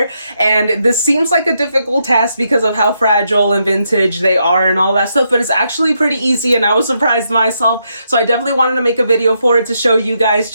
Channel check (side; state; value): both; inverted; correlation -0.80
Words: And this seems like a difficult task because of how fragile and vintage they are and all that stuff, but it's actually pretty easy and I was surprised myself. So I definitely wanted to make a video for it to show you guys